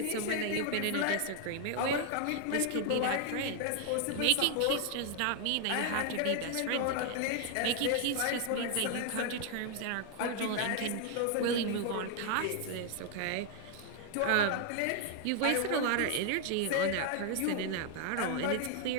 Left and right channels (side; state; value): both; different; correlation 0.00